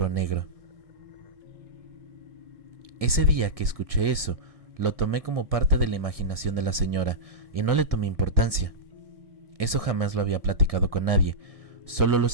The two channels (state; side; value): late; left; 1.7 ms